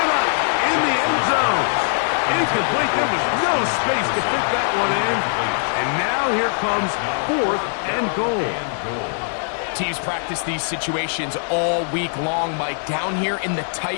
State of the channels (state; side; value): silent; right; 61 dB below the other